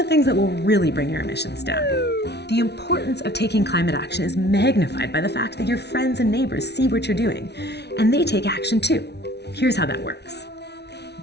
things that will really bring your emissions down. The importance of taking climate action is magnified by the fact that your friends and neighbors see what you're doing, and they take action too. Here's how that works.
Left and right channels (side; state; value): right; late; 0.49 ms